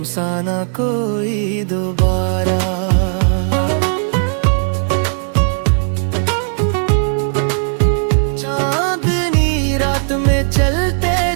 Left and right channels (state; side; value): silent; left; digital silence